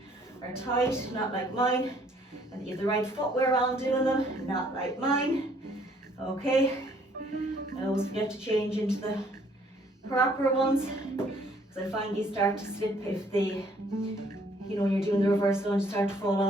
are tight, not like mine. And you have the right footwear on doing them, not like mine. Okay, I always forget to change into the proper ones, because I find you start to slip if they, you know, when you're doing the reverse lunge, start to fall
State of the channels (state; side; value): normal; both; correlation 0.62